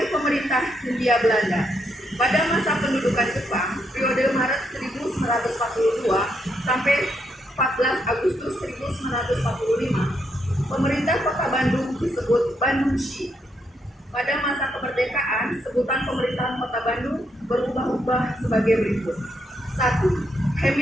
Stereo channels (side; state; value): both; normal; correlation 0.78